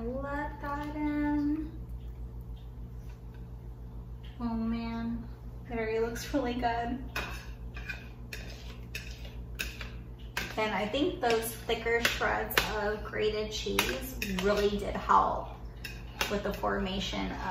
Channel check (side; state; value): both; identical; correlation 1.00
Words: let that in. Oh man, it already looks really good. And I think those thicker shreds of grated cheese really did help with the formation